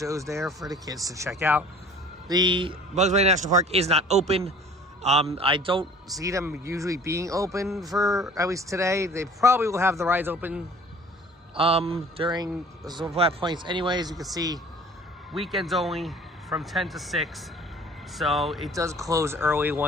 there for the kids to check out. The Bugs Bunny National Park is not open. I don't see them usually being open for at least today. They probably will have the rides open during some flat points anyways. You can see weekends only from 10 to 6. So it does close early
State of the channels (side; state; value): both; normal; correlation 0.49